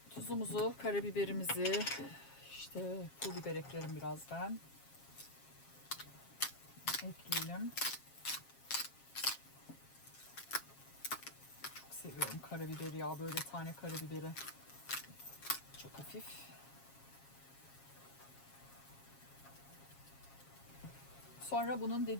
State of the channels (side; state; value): right; late; 7.4 ms